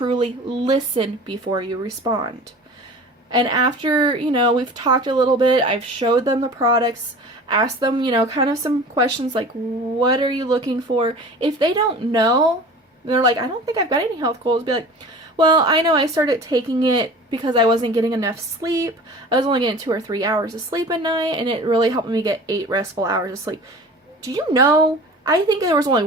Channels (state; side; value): normal; both; correlation 0.40